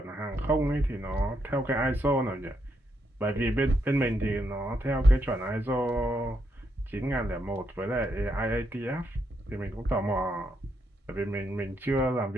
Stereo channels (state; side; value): normal; both; correlation 0.79